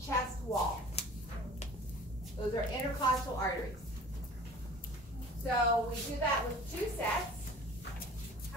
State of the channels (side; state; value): both; normal; correlation 0.44